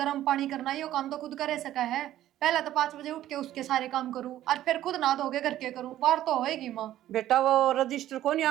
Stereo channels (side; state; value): left; quieter; 13.1 dB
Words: पानी करना, ये काम तो खुद करे सका है। पहले तो 5 बजे उठ के उसके सारे काम करूँ और फिर खुद ना धोगे घर के करूँ, बाहर तो होएगी माँ। बेटा वो रजिस्टर को नहीं